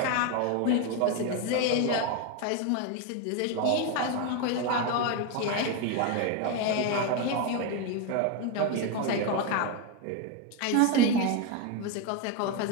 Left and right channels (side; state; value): both; different; correlation 0.02